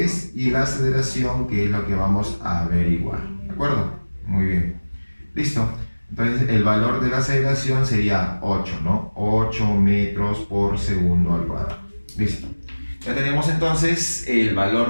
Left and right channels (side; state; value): both; inverted; correlation -1.00